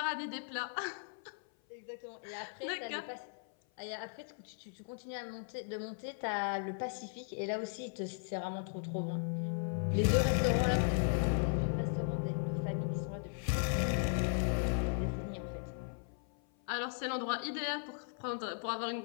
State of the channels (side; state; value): right; silent; 53 dB below the other